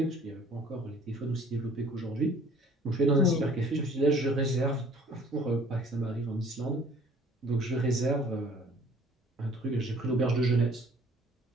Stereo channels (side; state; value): both; normal; correlation 0.53